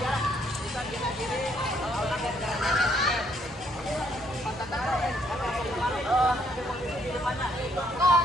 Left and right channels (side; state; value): both; normal; correlation 0.69